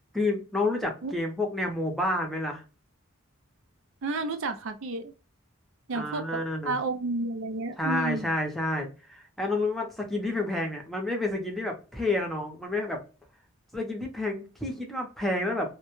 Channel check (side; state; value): both; normal; correlation 0.53